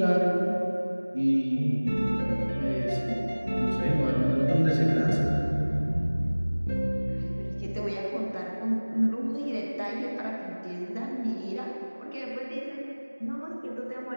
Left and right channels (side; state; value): both; inverted; correlation -1.00